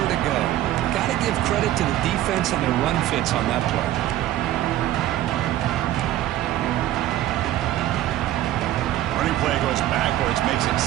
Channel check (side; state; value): left; quieter; 13.8 dB